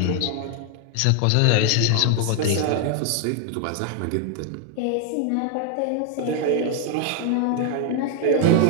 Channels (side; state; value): both; different; correlation 0.00